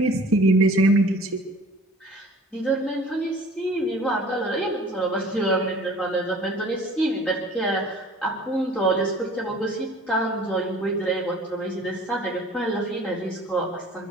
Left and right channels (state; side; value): normal; both; correlation 0.48